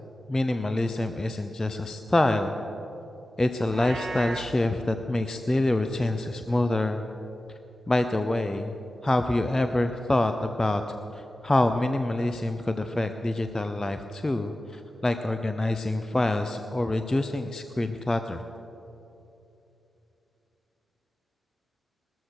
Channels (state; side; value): normal; both; correlation 0.95